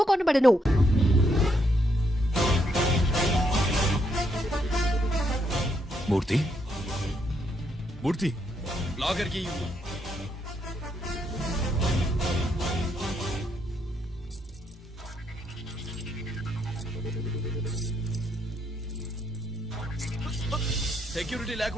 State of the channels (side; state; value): both; normal; correlation 0.76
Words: కొనబడను. మూర్తి, మూర్తి, లాగర్ కి సెక్యూరిటీ